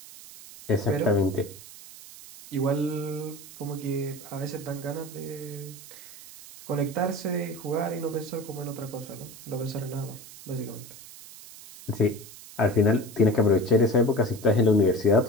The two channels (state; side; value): noise; right; hiss, 17 dB below the sound